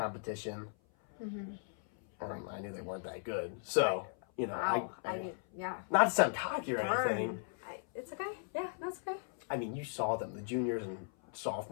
I knew they weren't that good. So, you know, Wow. I mean, yeah. not to sound cocky or anything. Burn. It's okay. Yeah, that's okay. I mean, you saw them, the juniors and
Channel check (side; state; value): right; silent; 53 dB below the other